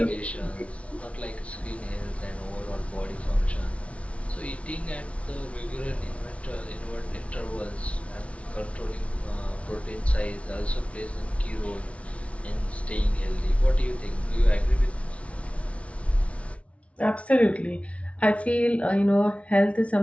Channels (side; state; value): right; late; 0.063 ms